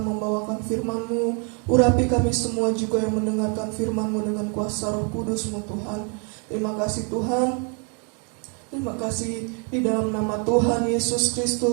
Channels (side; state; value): left; quieter; 38.1 dB